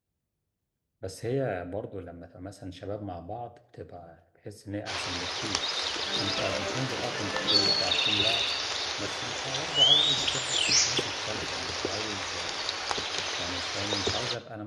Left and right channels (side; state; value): both; identical; correlation 1.00